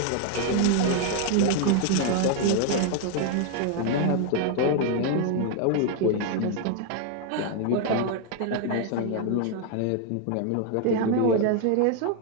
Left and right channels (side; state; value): both; different; correlation 0.00